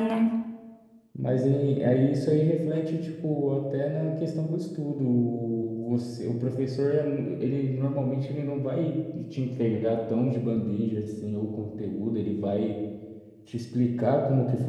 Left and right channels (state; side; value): identical; both; correlation 1.00